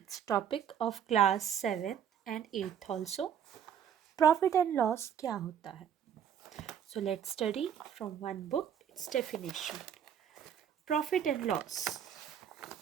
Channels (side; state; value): left; quieter; 8.8 dB